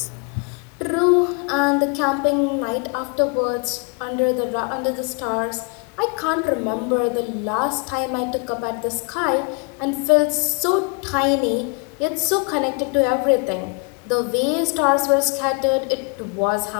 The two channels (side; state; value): right; quieter; 32.4 dB